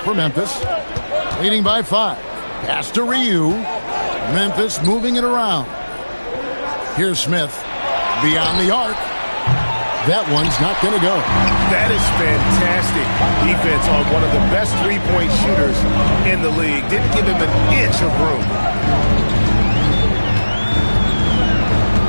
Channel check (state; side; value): inverted; both; correlation -1.00